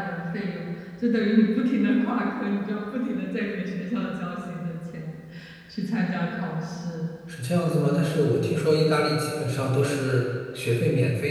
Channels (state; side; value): identical; both; correlation 1.00